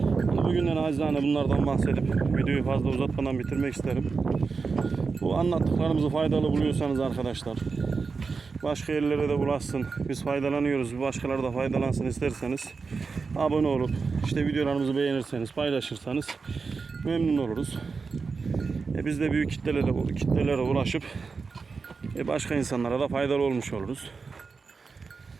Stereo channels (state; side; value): quieter; left; 4.8 dB